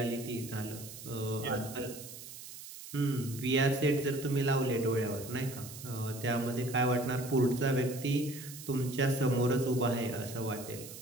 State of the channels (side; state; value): right; noise; hiss, 13 dB below the sound